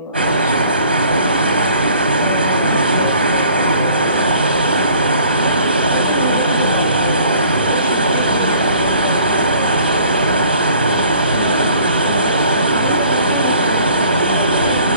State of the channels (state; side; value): inverted; both; correlation -0.54